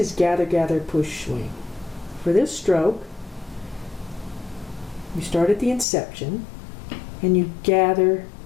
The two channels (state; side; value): drops out; right; at 5.9 s